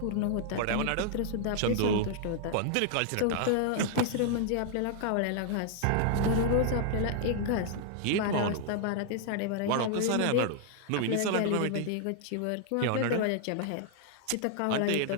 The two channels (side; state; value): both; different; correlation 0.00